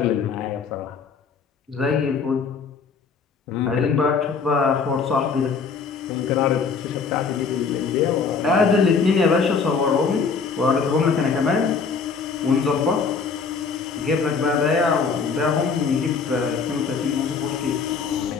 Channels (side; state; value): right; quieter; 5.3 dB